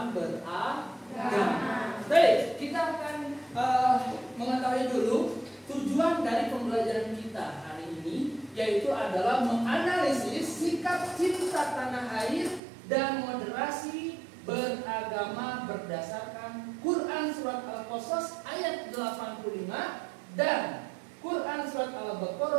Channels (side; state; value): left; drops out; at 12.6 s